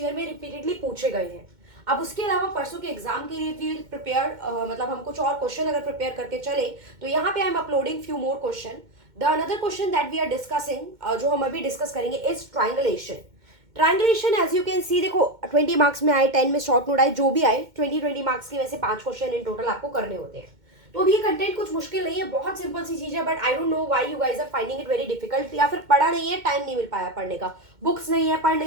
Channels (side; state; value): left; late; 2.1 ms